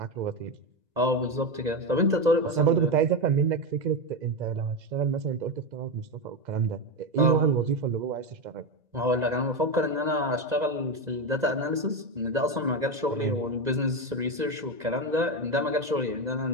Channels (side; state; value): left; late; 2.0 ms